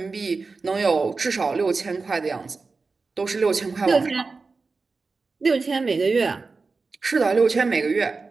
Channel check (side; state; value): left; quieter; 4.2 dB